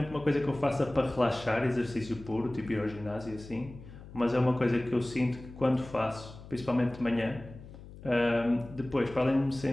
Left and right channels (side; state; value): left; noise; hum, 16 dB below the sound